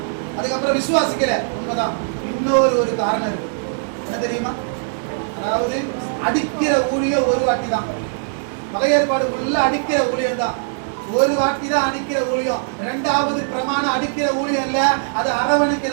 அதுக்கப்புறம் விசுவாசிக்கிற உண்மைதான். இன்னொரு காரணம் இருக்கு, என்ன தெரியுமா? அதாவது அடிக்கிற ஊழியம் ஒரு வாட்டி தான். பழைய ஏற்பாடு உள்ள அடிக்கிற ஊழியம் தான், ஒரு வாட்டி தான் அடிக்கிற ஊழியம். இரண்டாவது பிரமாணம் அடிக்கிற ஊழியம் இல்ல, அது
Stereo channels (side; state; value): left; silent; digital silence